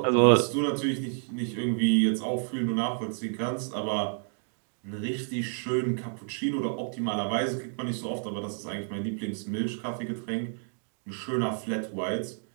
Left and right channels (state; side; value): silent; left; 58 dB below the other